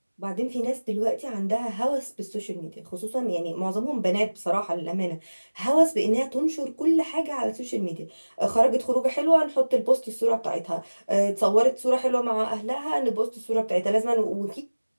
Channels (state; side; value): inverted; both; correlation -1.00